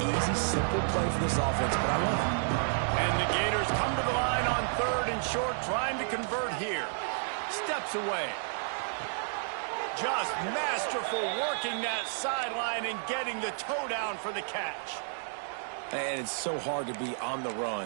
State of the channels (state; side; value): silent; left; digital silence